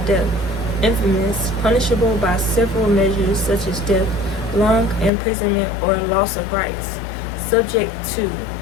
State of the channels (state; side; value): drops out; right; at 5.1 s